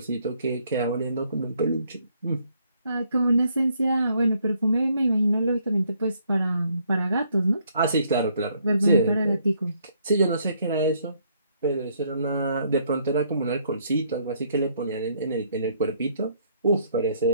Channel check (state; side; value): inverted; both; correlation -0.68